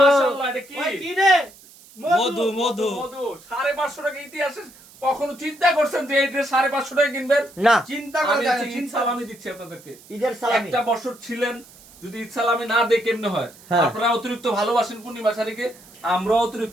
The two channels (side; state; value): right; noise; hiss, 23 dB below the sound